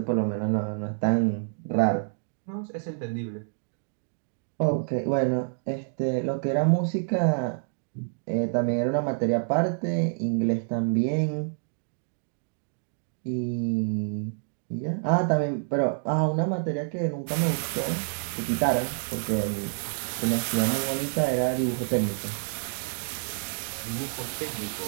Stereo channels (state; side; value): silent; left; digital silence